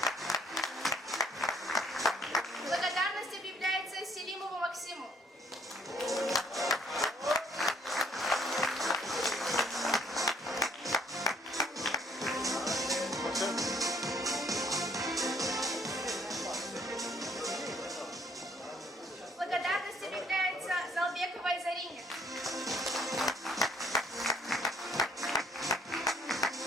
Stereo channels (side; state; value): both; normal; correlation 0.63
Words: Благодарность объявляется Селимову Максиму. Благодарность объявляется Залбековой Зарине.